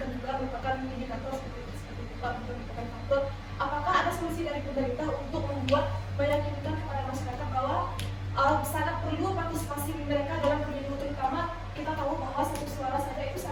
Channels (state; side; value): identical; both; correlation 1.00